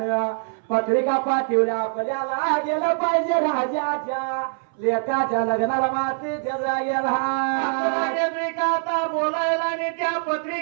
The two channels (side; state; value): left; silent; 63 dB below the other